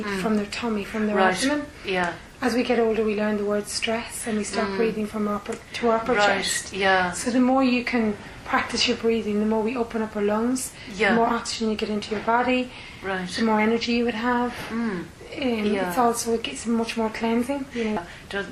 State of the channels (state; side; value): identical; both; correlation 1.00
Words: from their tummy, from their abdomen. Yeah. As we get older, we learn the word stress, and we start breathing from upper chest. Yeah. So the more you can practice your breathing, the more we open up our lungs, the more oxygen you get into your body, the more energy you would have. It gets much more cleansing.